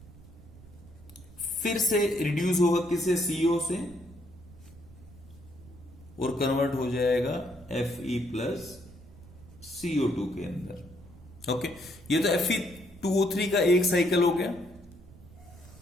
फिर से रिड्यूस होगा किससे? CO से, और कन्वर्ट हो जाएगा Fe प्लस CO2 के अंदर। ओके, ये तो Fe2O3 का एक साइकिल हो गया।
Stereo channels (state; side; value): noise; right; rumble, 20 dB below the sound